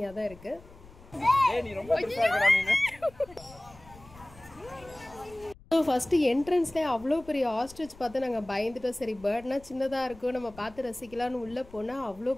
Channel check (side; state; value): left; noise; rumble, 22 dB below the sound